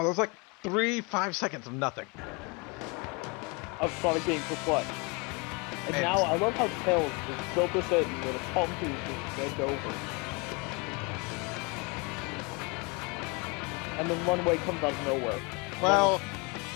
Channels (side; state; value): right; quieter; 29.8 dB